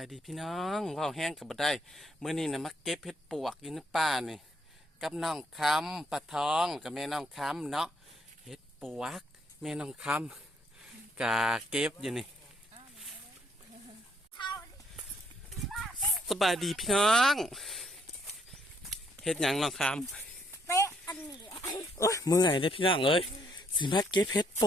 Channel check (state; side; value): normal; both; correlation 0.69